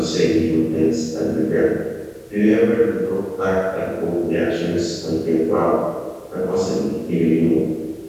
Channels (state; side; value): identical; both; correlation 1.00